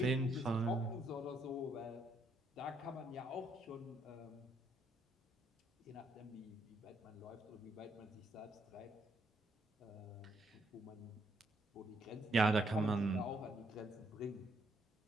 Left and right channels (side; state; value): both; normal; correlation 0.72